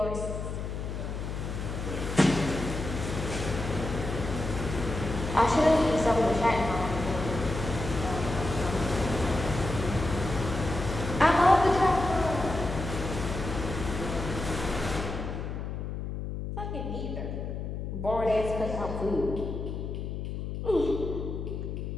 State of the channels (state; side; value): noise; left; hum, 5 dB below the sound